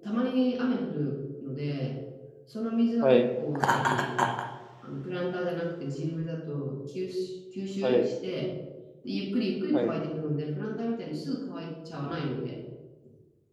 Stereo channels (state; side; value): identical; both; correlation 1.00